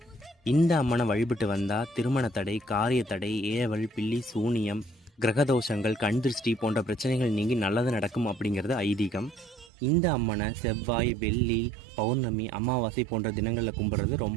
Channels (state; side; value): drops out; left; at 9.7 s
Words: இந்த அம்மனை வழிபட்டு வந்தால் திருமண தடை, காரிய தடை, ஏவல், பில்லி, சூனியம், கிரகதோஷங்கள், கண் திருஷ்டி போன்ற பிரச்சனைகள் நீங்கி நல்லது நடக்கும் அப்படிங்கிறது ஐதீகம். இந்த அம்மனை செவ்வாய், வெள்ளி, பௌர்ணமி, அமாவாசை போன்ற தினங்களில் கும்பிட்றது